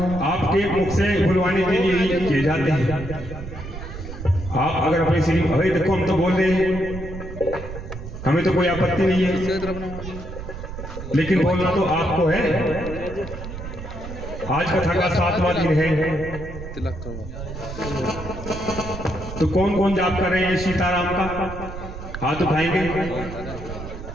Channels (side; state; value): right; noise; rumble, 10 dB below the sound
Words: आपके मुख से बुलवाने के लिए ही किए जाते हैं। आप अगर अपने श्री भाई देखो हम तो बोल रहे हैं, हमें तो कोई आपत्ति नहीं है, लेकिन बोलना तो आपको है। आज कथा का 7वां दिन है, तो कौन कौन जाप कर रहे हैं सीताराम का? हाथ उठाएंगे।